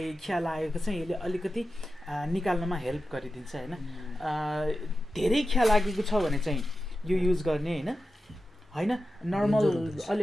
खिया लागेको चाहिँ यसले अलिकति निकाल्नमा हेल्प गरिदिन्छ होइन धेरै खिया लागेको छ भने चाहिँ यो युज गर्ने होइन होइन नर्मल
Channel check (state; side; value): normal; both; correlation 0.92